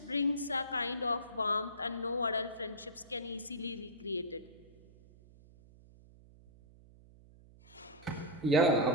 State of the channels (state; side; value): noise; right; hum, 23 dB below the sound